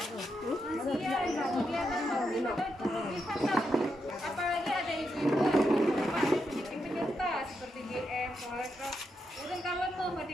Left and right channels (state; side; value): normal; both; correlation 0.83